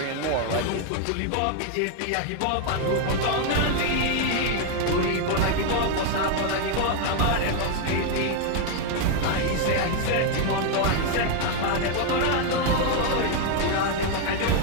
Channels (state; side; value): different; both; correlation 0.01